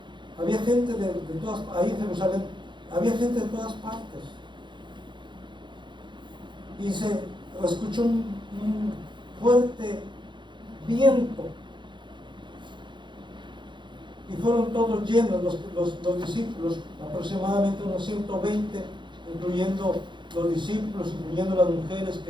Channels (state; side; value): late; left; 0.23 ms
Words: había gente de todas, ahí en Jerusalén, había gente de todas partes. Y se escuchó un fuerte viento. Y fueron todos llenos los discípulos, aproximadamente unos 120, incluyendo los discípulos, incluyendo las mujeres